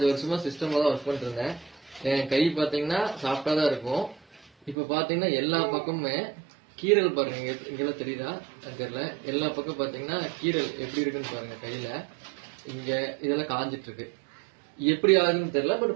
வருஷமா சிஸ்டம்ல தான் ஒர்க் பண்ணிட்டு இருந்தேன். என் கை பாத்தீங்கன்னா சாஃப்டா தான் இருக்கும். இப்ப பாத்தீங்கன்னா எல்லா பக்கமுமே கீரல் பாருங்க, இங்கெல்லாம் தெரியுதா தெரியல. எல்லா பக்கம் பாத்தீங்கன்னா கீரல் எப்படி இருக்குன்னு பாருங்க. கையில இங்க இதெல்லாம் காஞ்சிட்டு இருக்கு. எப்படி ஆகுதுன்னு தெரியல. பட்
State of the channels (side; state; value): left; drops out; at 4.8 s